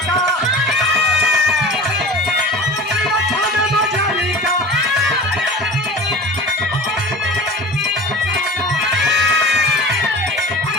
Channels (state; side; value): normal; both; correlation 0.37